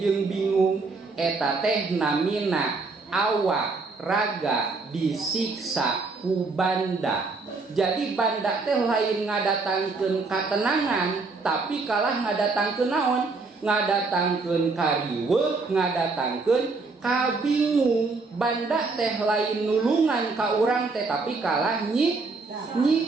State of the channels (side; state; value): left; quieter; 3.9 dB